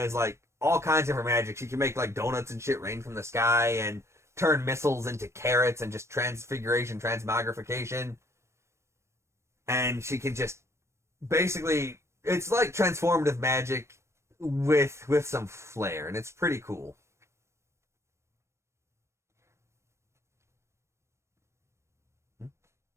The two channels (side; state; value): left; late; 0.13 ms